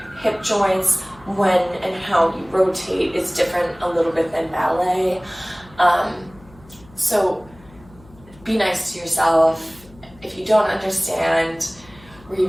hip joints, when and how you rotate is different a little bit than ballet. So be nice to yourself. If you don't understand,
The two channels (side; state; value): left; noise; hum, 24 dB below the sound